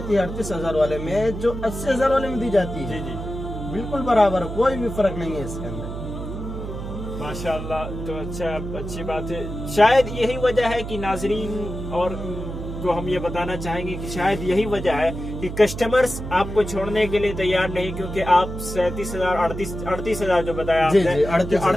ہے 38,000 والے میں جو 80,000 والے میں دی جاتی ہے۔ جی، بالکل برابر، کوئی بھی فرق نہیں ہے اس کے اندر۔ ماشاءاللہ، تو اچھی بات ہے۔ شاید یہی وجہ ہے کہ ناظرین اور کو ہم یہ بتانا چاہیں گے کہ شاید یہی وجہ ہے کہ کسٹمرز آپ کو چھوڑنے کے لیے تیار نہیں، کیونکہ آپ 38,000 جو بتایا آپ نے،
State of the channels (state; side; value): noise; right; hum, 7 dB below the sound